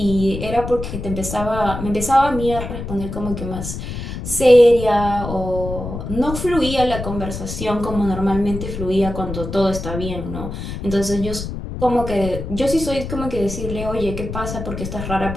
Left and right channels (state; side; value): noise; left; rumble, 7 dB below the sound